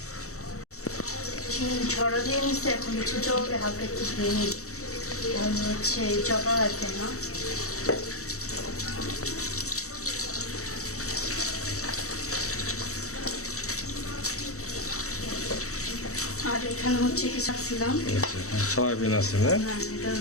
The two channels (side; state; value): right; late; 0.65 ms